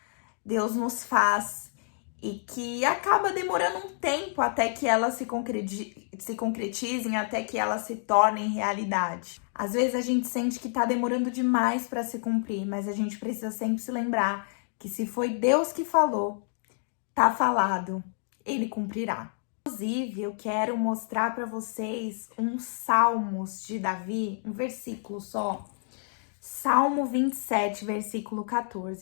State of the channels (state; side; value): silent; right; digital silence